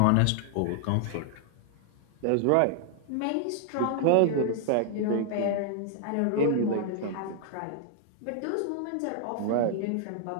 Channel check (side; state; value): both; different; correlation 0.00